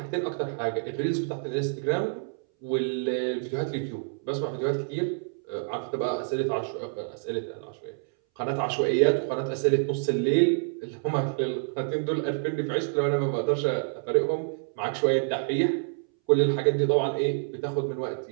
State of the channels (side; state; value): left; silent; 60 dB below the other